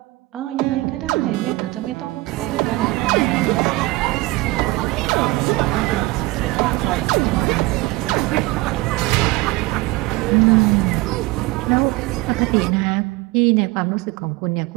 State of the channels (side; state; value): left; quieter; 21.0 dB